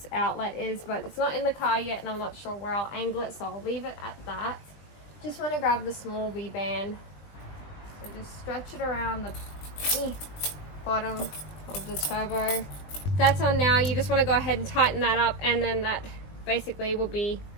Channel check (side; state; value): right; late; 20 ms